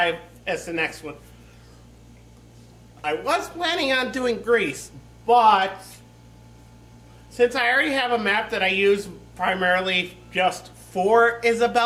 as the next one. I was planning on doing Greece, but since I already have a map that I use primarily just for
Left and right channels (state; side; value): identical; both; correlation 1.00